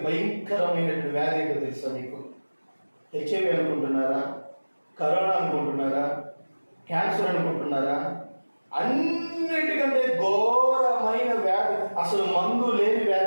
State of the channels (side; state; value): both; inverted; correlation -1.00